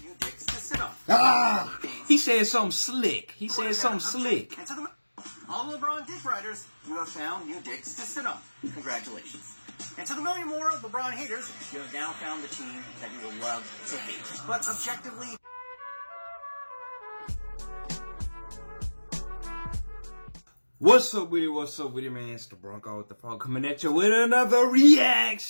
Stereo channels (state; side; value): inverted; both; correlation -1.00